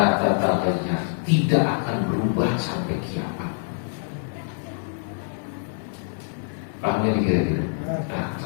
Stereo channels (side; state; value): right; silent; digital silence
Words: tataghayyar, tidak akan berubah sampai kiamat. Pahamnya kira-kira? Nah,